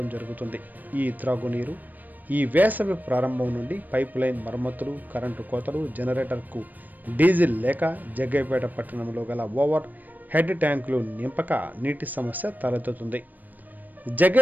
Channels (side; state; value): left; late; 0.086 ms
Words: జరుగుతుంది. ఈ త్రాగునీరు ఈ వేసవి ప్రారంభం నుండి పైప్ లైన్ మరమ్మతులు, కరెంటు కోతలు, జనరేటర్కు డీజిల్ లేక జగ్గయ్యపేట పట్టణంలో గల ఓవర్ హెడ్ ట్యాంకులు నింపక నీటి సమస్య తలెత్తుతుంది.